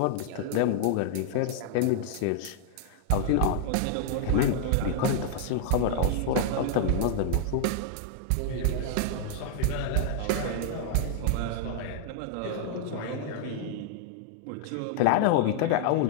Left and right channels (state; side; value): different; both; correlation -0.01